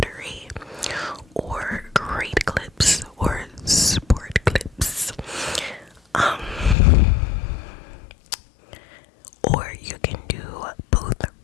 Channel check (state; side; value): drops out; right; at 6.8 s